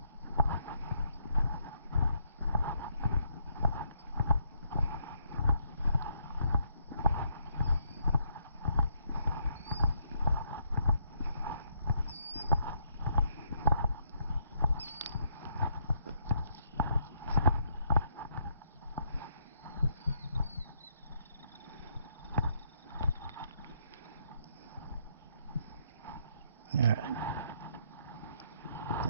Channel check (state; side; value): inverted; both; correlation -0.73